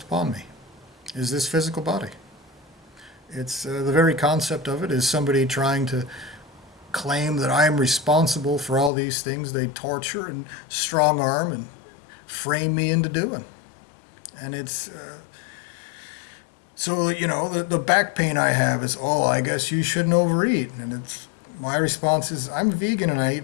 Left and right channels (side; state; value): right; drops out; at 8.9 s